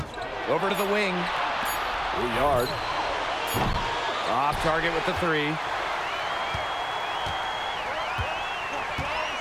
Over to the wing. Riard. Off target with the 3.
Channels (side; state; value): both; identical; correlation 1.00